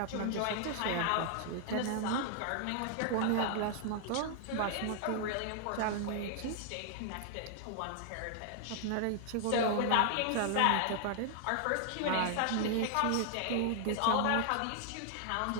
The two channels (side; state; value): both; different; correlation 0.00